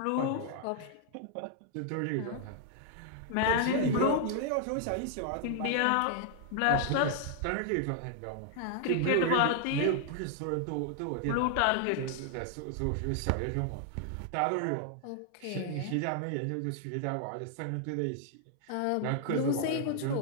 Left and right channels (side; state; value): both; different; correlation 0.00